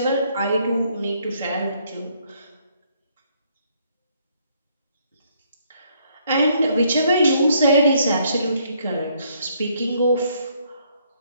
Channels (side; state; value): both; inverted; correlation -0.68